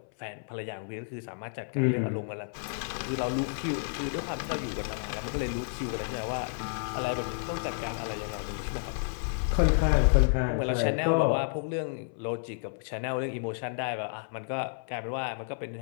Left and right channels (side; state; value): right; silent; 57 dB below the other